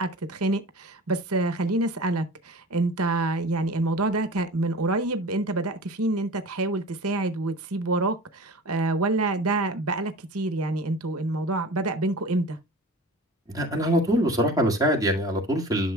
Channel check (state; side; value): normal; both; correlation 0.37